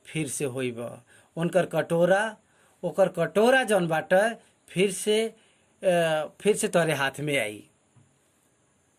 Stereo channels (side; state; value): both; identical; correlation 1.00